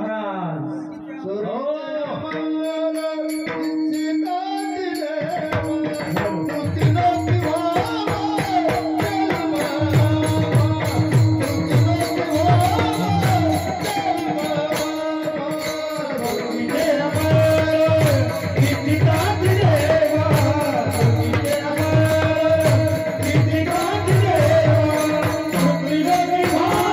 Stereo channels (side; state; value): both; identical; correlation 1.00